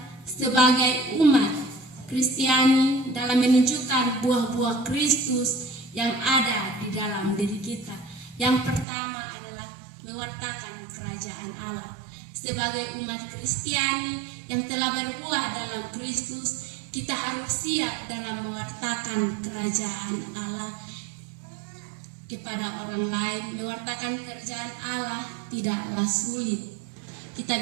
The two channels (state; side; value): drops out; left; at 8.8 s